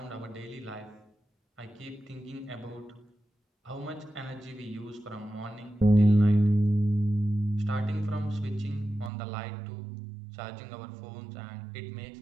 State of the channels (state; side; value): drops out; left; at 9.1 s